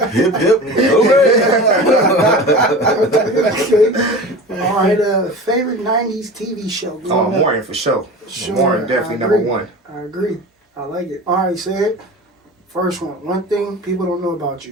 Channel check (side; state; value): both; normal; correlation 0.34